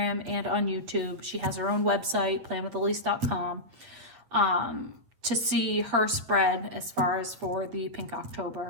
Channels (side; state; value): left; late; 8.9 ms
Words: and on YouTube. She has her own website, planwithilysse.com. To see her spread as far as for the Pink